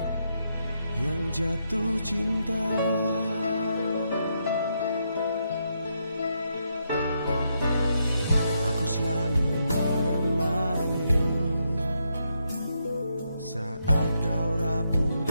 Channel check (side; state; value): both; inverted; correlation -0.80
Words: yang jatuh cinta. Aku selalu menemani saat kau rapuh